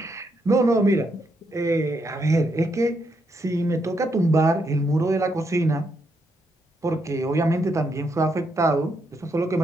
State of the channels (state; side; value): normal; both; correlation 0.78